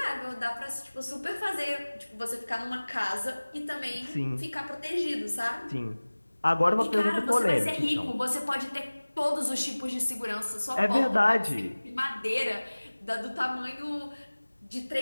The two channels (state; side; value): inverted; both; correlation -1.00